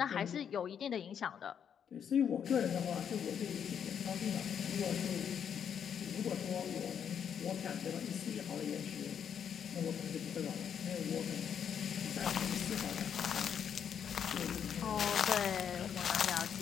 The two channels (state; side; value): quieter; right; 8.1 dB